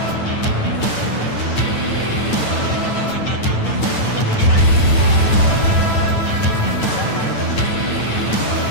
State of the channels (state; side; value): late; right; 9.1 ms